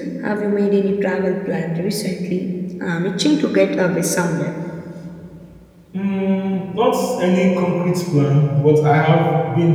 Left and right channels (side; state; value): both; identical; correlation 1.00